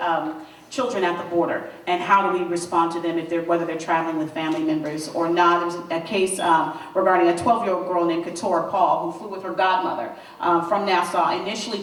children at the border, and how do we respond to them if whether they're traveling with family members or not. There's a case regarding a 12-year-old girl named Katora Paul who flew with her godmother from Nassau initially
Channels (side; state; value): both; identical; correlation 1.00